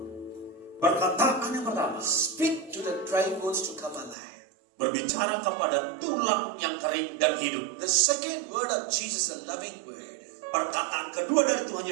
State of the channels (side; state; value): left; drops out; at 4.2 s